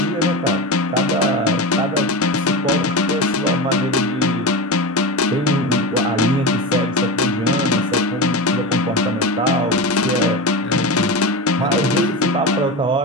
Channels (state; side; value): normal; both; correlation 0.23